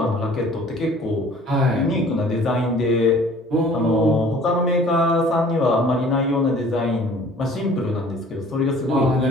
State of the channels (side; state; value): both; normal; correlation 0.51